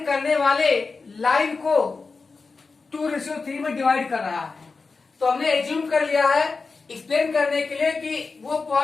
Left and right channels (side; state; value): right; quieter; 4.3 dB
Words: करने वाले लाइन को 2:3 में डिवाइड कर रहा है. तो हमने एज्यूम कर लिया है एक्सप्लेन करने के लिए कि वो